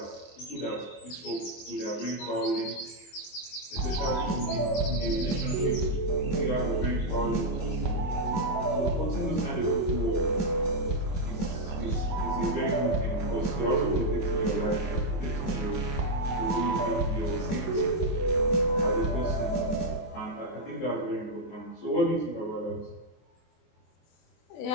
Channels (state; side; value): late; right; 23 ms